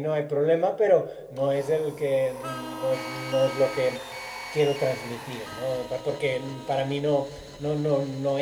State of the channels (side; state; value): both; identical; correlation 1.00